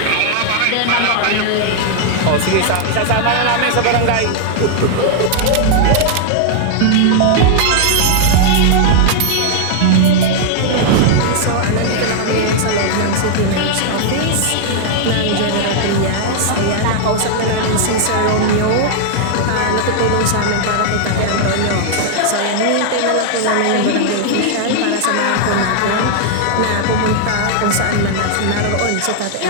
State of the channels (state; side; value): different; both; correlation 0.00